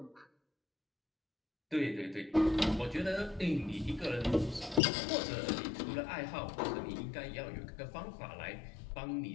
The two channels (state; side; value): drops out; right; at 4.8 s